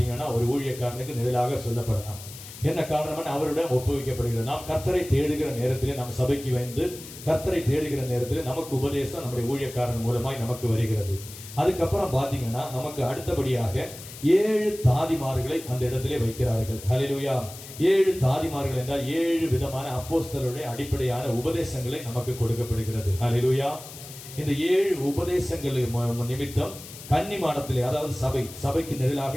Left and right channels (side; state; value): left; noise; hiss, 15 dB below the sound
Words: ஒரு ஊழியக்காரனுக்கு நிழலாக சொல்லப்படலாம். என்ன காரணம்? அவருடன் ஒப்புவிக்கப்படுகிறது. நாம் கர்த்தரை தேடுகிற நேரத்திலே, நம் சபைக்கு வந்து கர்த்தரை தேடுகிற நேரத்திலே நமக்கு உபதேசம் நம்முடைய ஊழியக்காரன் மூலமாய் நமக்கு வருகிறது. அதுக்கப்புறம் பாத்தீங்கன்னா நமக்கு அடுத்தபடியாக 7 தாதிமார்களை அந்த இடத்திலே வைக்கிறார்கள். ஹல்லேலூயா. 7 தாதிமார்கள் என்றால் 7 விதமான அப்போஸ்தலருடைய அடிப்படையான உபதேசங்களை நமக்கு கொடுக்கப்படுகிறது. ஹல்லேலூயா. இந்த 7 உபதேசங்கள் நிமித்தம் கன்னிமாடத்திலே, அதாவது சபைக்கு